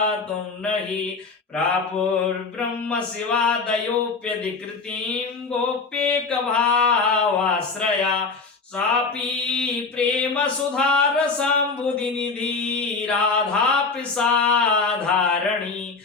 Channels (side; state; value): right; quieter; 4.4 dB